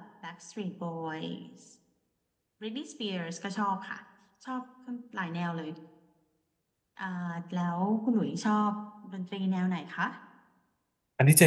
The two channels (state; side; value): identical; both; correlation 1.00